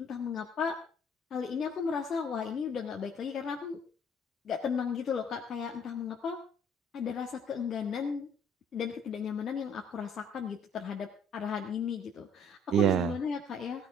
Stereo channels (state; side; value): normal; both; correlation 0.59